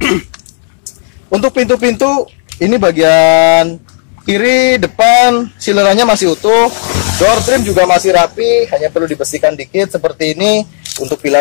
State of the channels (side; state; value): right; silent; digital silence